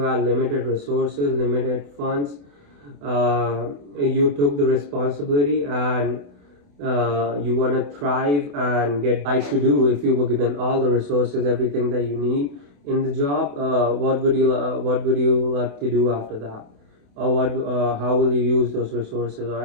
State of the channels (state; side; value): late; left; 28 ms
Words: limited resources, limited funds. You took the responsibility, and you want to thrive and get like to do. If you were given all the resources, everything that you need in the job, what would you like to do after that, or how will you use those resources? All